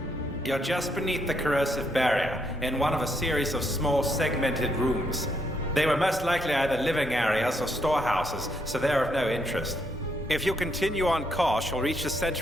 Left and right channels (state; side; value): normal; both; correlation 0.75